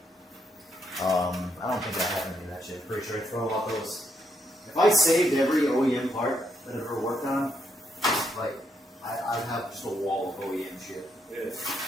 I don't think I have any of that shit. Pretty sure I throw out those. If I saved every OEM part that I've ever worked on, like I'd have just a wall of OEM shit. Yeah.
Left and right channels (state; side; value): normal; both; correlation 0.77